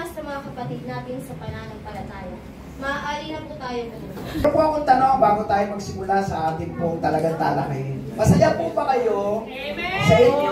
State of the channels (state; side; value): identical; both; correlation 1.00